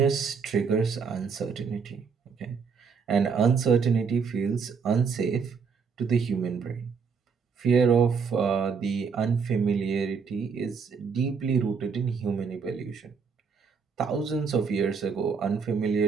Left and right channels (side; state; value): left; quieter; 5.8 dB